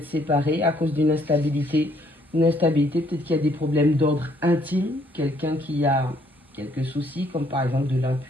séparé à cause d'une instabilité. Une instabilité, peut-être qu'il y a des problèmes d'ordre intime. Quelqu'un qui a quelques soucis, comme par exemple de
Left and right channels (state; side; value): normal; both; correlation 0.66